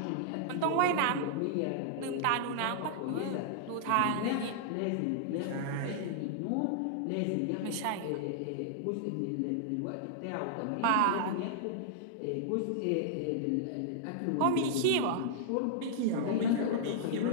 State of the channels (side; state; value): both; different; correlation -0.01